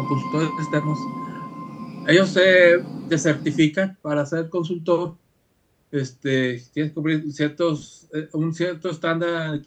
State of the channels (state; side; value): identical; both; correlation 1.00